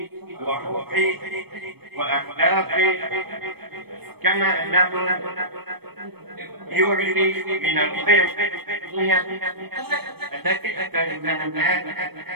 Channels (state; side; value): late; left; 0.97 ms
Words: وروحي وأخلاقي، كما أنه يعلي من القيم التي أتى منها الناس